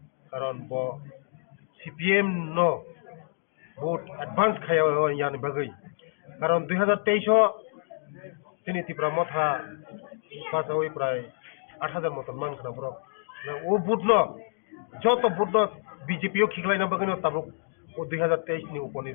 karon bo CPM no vote advance khaya yani bagai karon 2023 sini tipra motha pas oi pray 8000 moton man khana bro o vote no joto vote no BJP o khiklai na bagai no tabuk o 2023 ni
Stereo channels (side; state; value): right; silent; digital silence